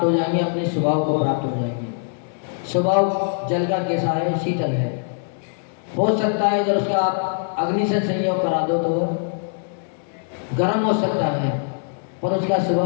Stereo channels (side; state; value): right; silent; digital silence